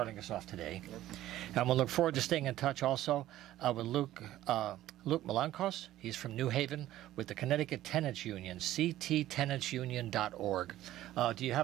us off today. And we'll look forward to staying in touch also with Luke Luke Melanakos. He's from New Haven with the Connecticut Tenants Union, cttenantsunion.org. Do you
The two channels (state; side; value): quieter; left; 14.2 dB